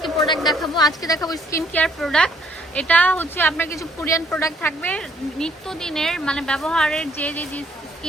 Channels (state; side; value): normal; both; correlation 0.65